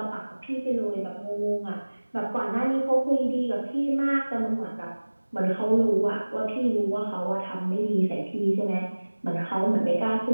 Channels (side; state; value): both; inverted; correlation -1.00